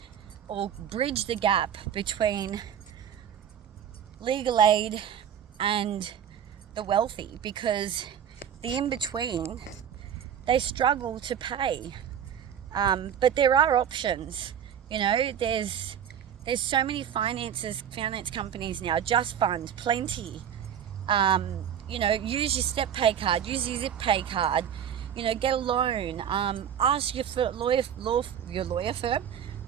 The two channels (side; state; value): left; quieter; 9.0 dB